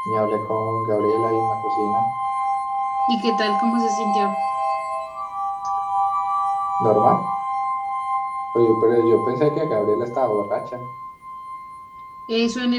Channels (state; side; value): identical; both; correlation 1.00